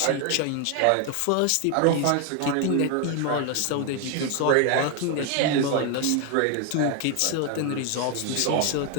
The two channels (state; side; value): different; both; correlation 0.01